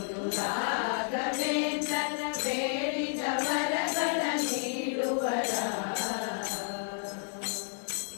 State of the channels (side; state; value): right; silent; 57 dB below the other